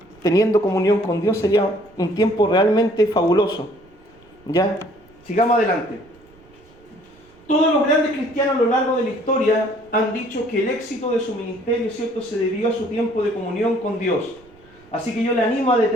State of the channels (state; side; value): noise; right; rumble, 28 dB below the sound